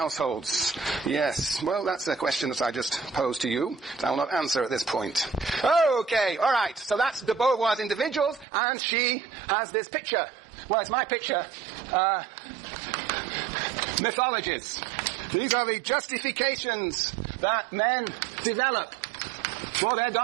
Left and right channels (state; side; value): drops out; left; at 8.5 s